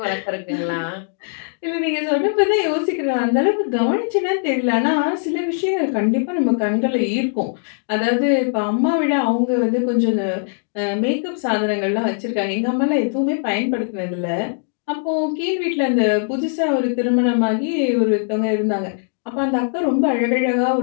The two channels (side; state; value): right; silent; 66 dB below the other